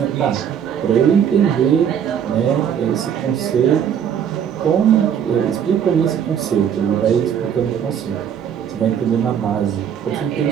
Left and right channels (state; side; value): quieter; left; 8.5 dB